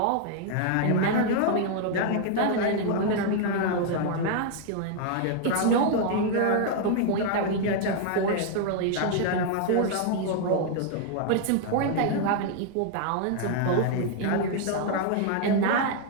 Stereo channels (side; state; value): both; different; correlation 0.00